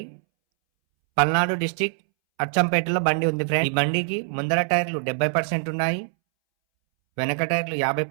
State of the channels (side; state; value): left; silent; 62 dB below the other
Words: పల్నాడు డిస్టిక్ అచ్చంపేటలో బండి ఉంది. ఫ్రెండ్స్ ఈ బండికి ముందర టైర్లు 70% ఉన్నాయి, వెనక టైర్లు